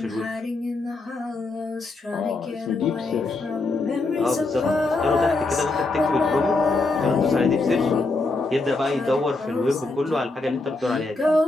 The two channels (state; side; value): quieter; right; 3.4 dB